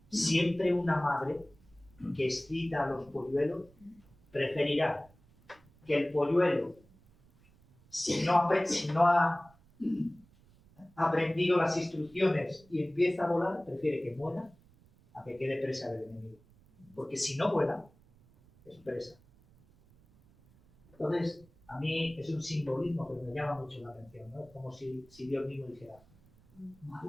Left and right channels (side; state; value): right; noise; rumble, 28 dB below the sound